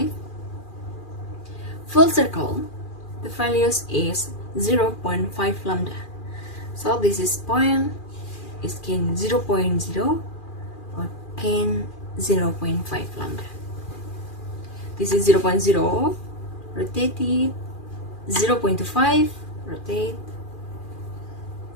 Full circle, the values is 0.5 lambda. So this is point, is can 0.0 or can 0.5 lambda. This is 0.0, rotate it, 0.25, rotate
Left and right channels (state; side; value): late; right; 2.4 ms